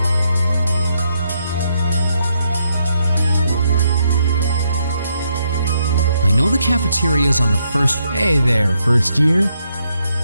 I know the cafeteria's on the first... Hey there, first year.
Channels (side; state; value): both; inverted; correlation -0.77